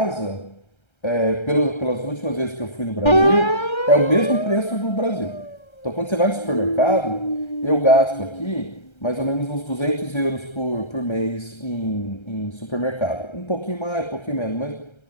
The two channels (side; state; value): right; late; 1.3 ms